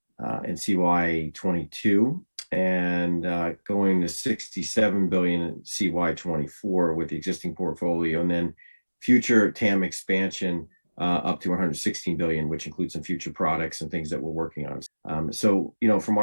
CY22 and going to $67 billion in CY24 with the existing portfolio, and then future TAM expansion up to $116 billion, which includes some future products and things that we're working on. So, from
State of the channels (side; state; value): both; inverted; correlation -1.00